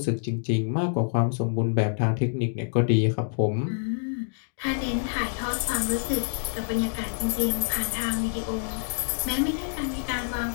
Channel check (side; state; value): right; silent; digital silence